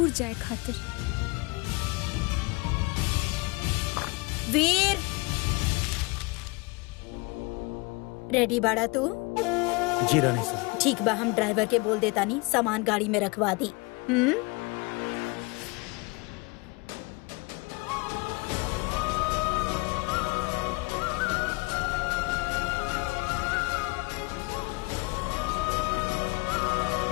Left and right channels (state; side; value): quieter; right; 27.1 dB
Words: जाए खातिर। वीर, रेडी बाड़ा तू? जी रानी साहब। ठीक बा, हम ड्राइवर के बोल देता नहीं सामान गाड़ी में रखवा दी।